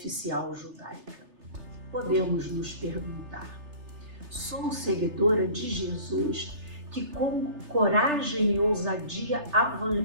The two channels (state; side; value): late; left; 3.3 ms